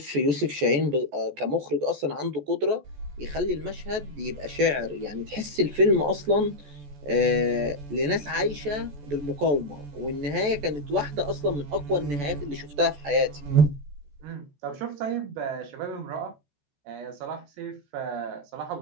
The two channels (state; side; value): late; left; 14 ms